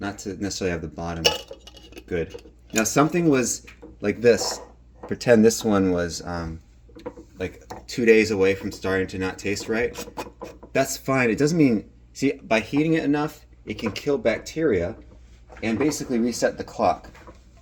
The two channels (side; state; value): both; identical; correlation 1.00